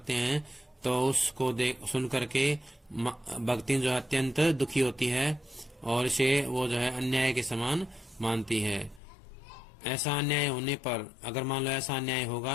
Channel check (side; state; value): right; drops out; at 9.0 s